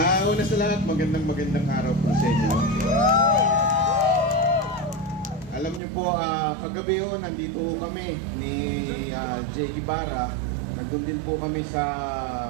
Una sa lahat, magandang araw po sa inyo. Alam niyo po, kagabi nandito kami ni Jay Ibarra. Nandun din po kami sa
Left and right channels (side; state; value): left; drops out; at 5.8 s